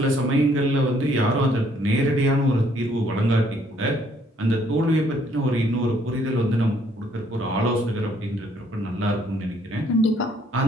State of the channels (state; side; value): normal; both; correlation 0.65